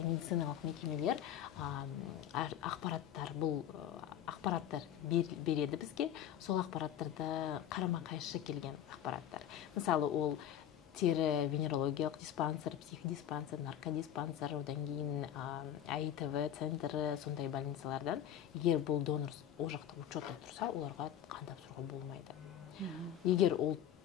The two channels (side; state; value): right; quieter; 10.4 dB